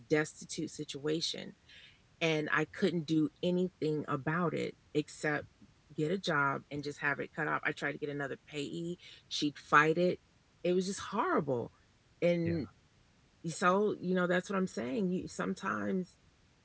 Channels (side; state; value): both; identical; correlation 1.00